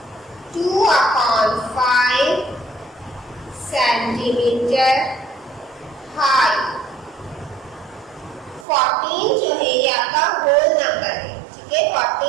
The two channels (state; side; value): drops out; left; at 8.7 s